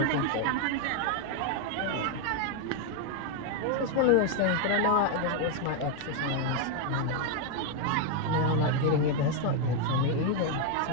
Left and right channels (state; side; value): different; both; correlation 0.01